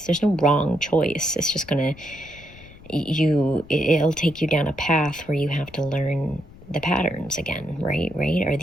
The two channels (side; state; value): left; noise; rumble, 20 dB below the sound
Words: There's no wrong choice. It's just it'll take you down a path where you have to learn the patterns again, right? Are